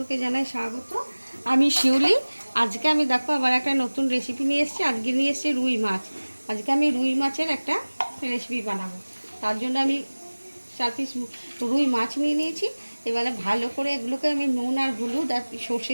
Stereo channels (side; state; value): both; inverted; correlation -1.00